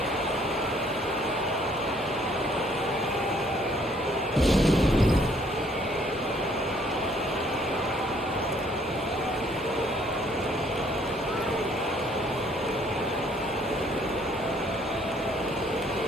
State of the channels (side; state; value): both; normal; correlation 0.63